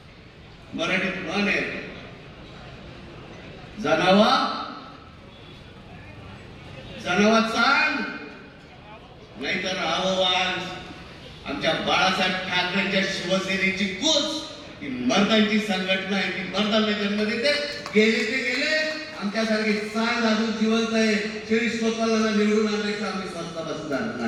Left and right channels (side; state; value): both; identical; correlation 1.00